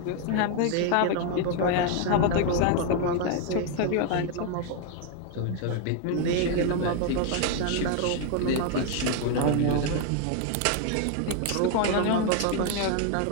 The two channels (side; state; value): both; different; correlation 0.01